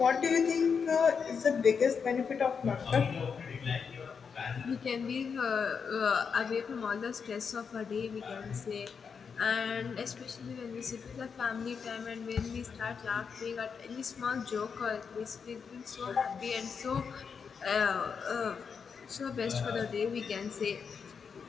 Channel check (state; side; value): quieter; right; 6.1 dB